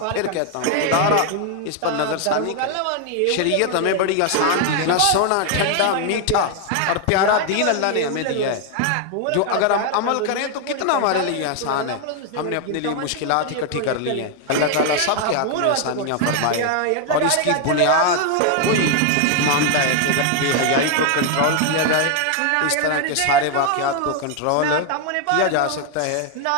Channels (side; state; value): both; different; correlation 0.00